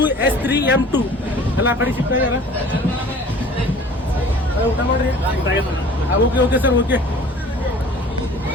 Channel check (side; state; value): both; normal; correlation 0.47